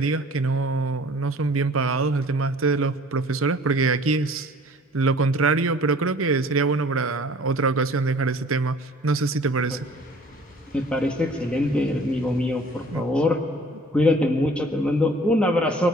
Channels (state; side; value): normal; both; correlation 0.51